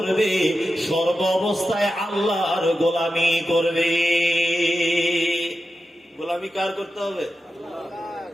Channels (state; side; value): normal; both; correlation 0.91